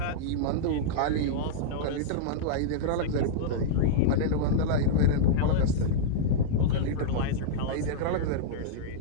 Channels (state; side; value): different; both; correlation -0.03